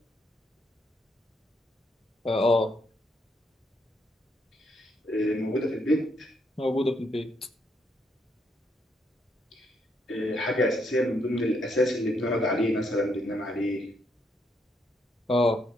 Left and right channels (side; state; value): both; normal; correlation 0.75